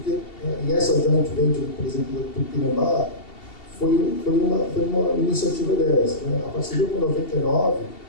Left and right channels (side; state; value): right; late; 2.7 ms